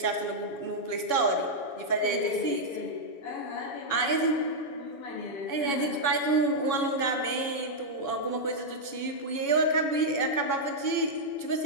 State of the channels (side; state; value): right; late; 7.1 ms